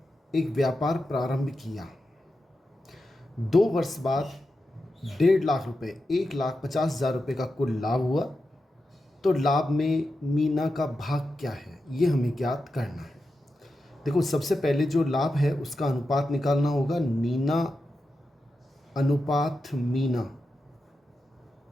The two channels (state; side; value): normal; both; correlation 0.89